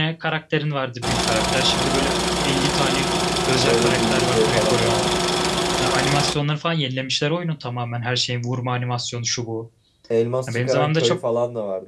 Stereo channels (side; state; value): both; identical; correlation 1.00